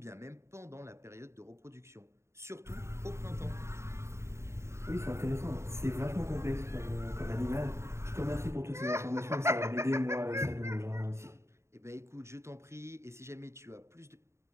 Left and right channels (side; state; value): left; late; 0.13 ms